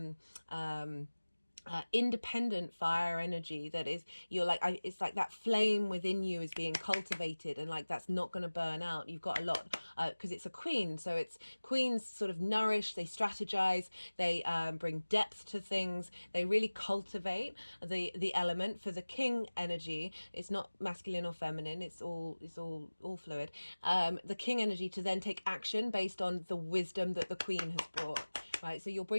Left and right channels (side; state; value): both; inverted; correlation -1.00